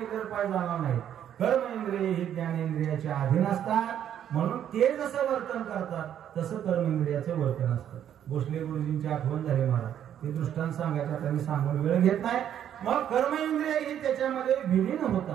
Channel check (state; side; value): quieter; left; 10.0 dB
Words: तर पाय जाणार नाही. कर्मेंद्रिय ही ज्ञानेंद्रियाच्या अधीन असतात म्हणून ते जसं वर्तन करतात तसं कर्मेंद्रियाचं वर्तन असतं. भोसले गुरुजींची आठवण झाली महाराज. ते दृष्टांत सांगायचा त्यांनी सांगून वेळ घेत नाही. मग कर्मेंद्रिय ही त्याच्यामध्ये विलीन